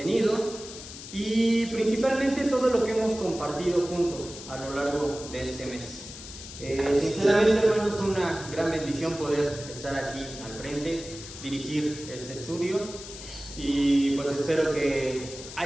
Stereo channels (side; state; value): left; noise; hiss, 13 dB below the sound